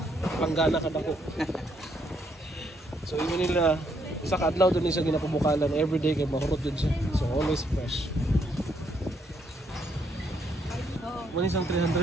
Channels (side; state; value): both; normal; correlation 0.73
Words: ka na ko. So, yun nila. Isa ka adlaw doon siya ginapabukalan. Everyday kay mahurot din siya. So, always fresh. Muna isang 300